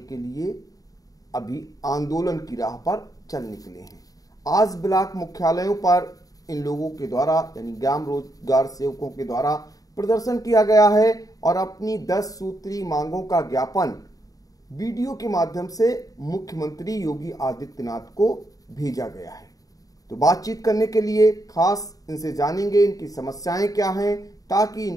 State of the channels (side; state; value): right; late; 0.17 ms